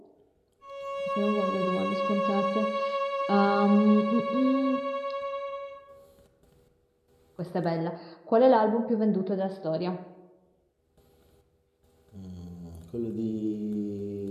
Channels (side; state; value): both; identical; correlation 1.00